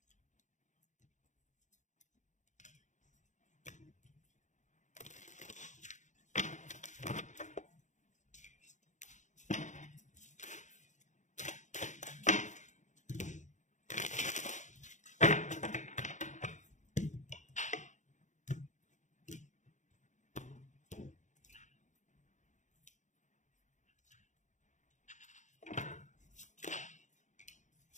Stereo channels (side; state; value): right; late; 0.35 ms